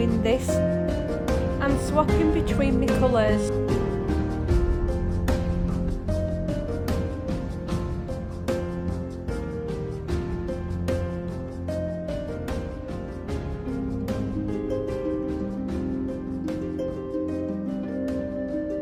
this and swapping between my colours.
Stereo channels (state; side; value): identical; both; correlation 1.00